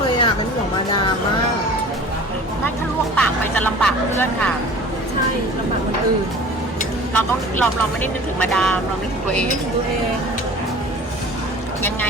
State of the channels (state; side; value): normal; both; correlation 0.42